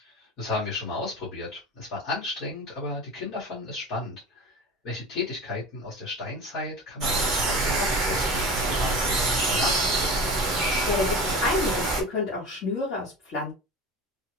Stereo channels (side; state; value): both; normal; correlation 0.32